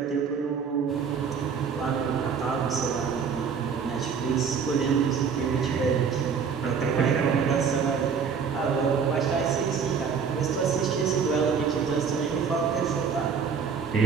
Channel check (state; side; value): quieter; left; 6.3 dB